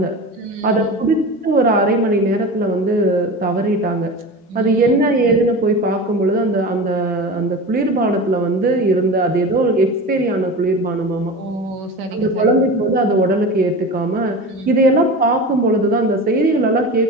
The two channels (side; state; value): both; normal; correlation 0.30